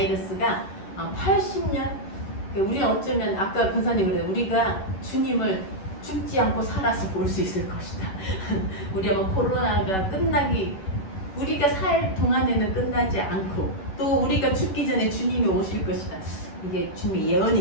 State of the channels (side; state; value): right; late; 11 ms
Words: 80년, 우리는 어쩌면 아까 권사님 그래요. 우리가 주님을 죽지 않고 살아서 볼 수 있을 것이다. 우리 아마 코로나가 우리가 살 동안에는 끝나지 않고 또 우리가 죽기 전에 주님이 오실 것이다. 이게 주님의